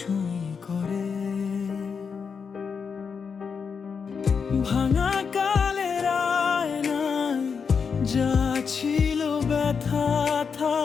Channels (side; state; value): right; quieter; 6.0 dB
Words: করে। ভাঙা কালের আয়নায় যা ছিল ব্যথা